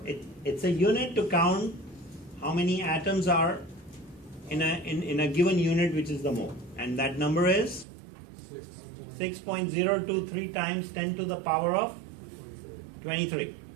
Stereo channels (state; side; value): drops out; left; at 7.9 s